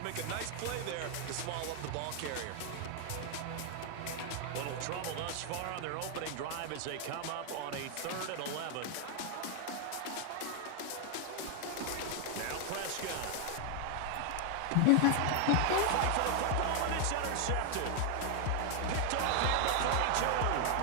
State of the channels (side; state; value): both; different; correlation 0.00